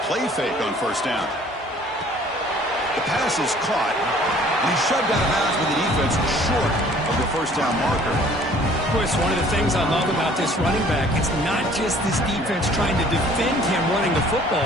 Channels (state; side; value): normal; both; correlation 0.54